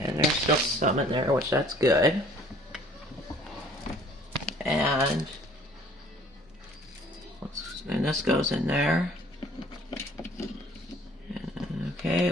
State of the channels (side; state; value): both; normal; correlation 0.54